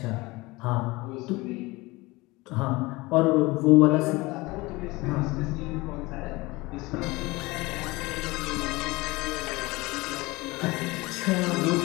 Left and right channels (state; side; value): quieter; right; 22.2 dB